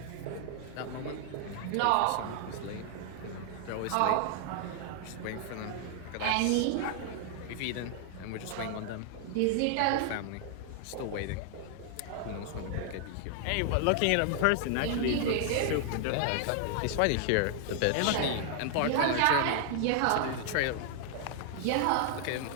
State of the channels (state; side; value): different; both; correlation 0.00